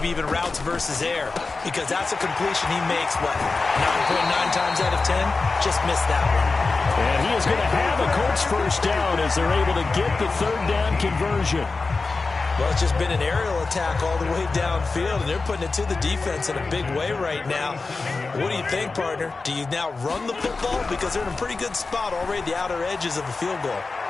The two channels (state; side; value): quieter; right; 3.9 dB